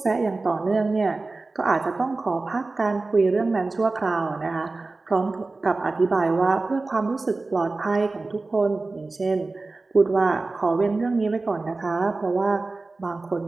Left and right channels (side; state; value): left; quieter; 3.5 dB